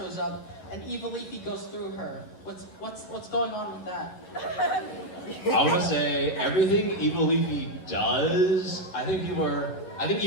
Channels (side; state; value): right; late; 11 ms